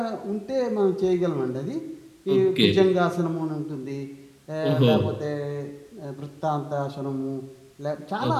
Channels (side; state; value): both; identical; correlation 1.00